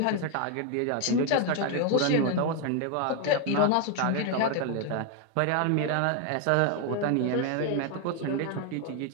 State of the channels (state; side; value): different; both; correlation 0.01